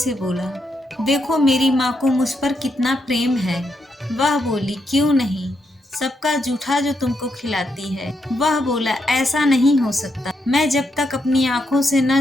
बोला, देखो मेरी माँ को मुझ पर कितना प्रेम है। वह बोली, क्यों नहीं, सबका जूठा जो तुमको खिलाती है। वह बोला, ऐसा नहीं हो सकता, मैं जब तक अपनी आंखों से न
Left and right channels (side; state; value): both; normal; correlation 0.80